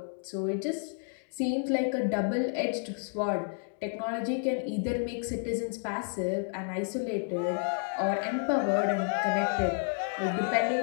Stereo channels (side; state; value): right; silent; 57 dB below the other